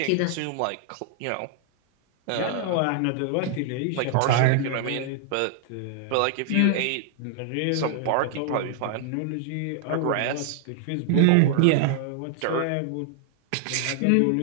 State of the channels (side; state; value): both; different; correlation 0.00